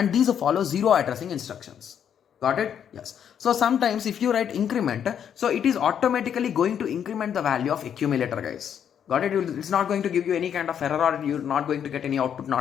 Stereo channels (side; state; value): right; quieter; 8.7 dB